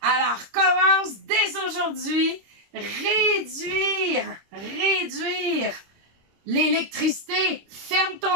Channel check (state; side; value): late; left; 26 ms